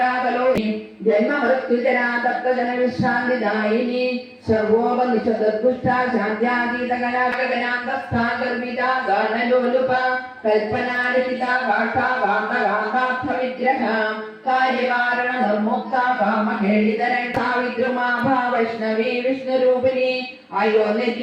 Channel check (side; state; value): both; identical; correlation 1.00